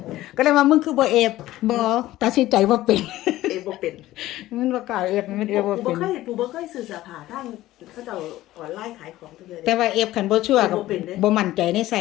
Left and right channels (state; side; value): quieter; right; 15.7 dB